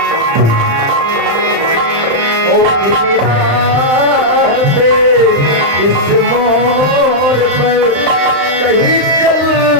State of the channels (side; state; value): left; late; 35 ms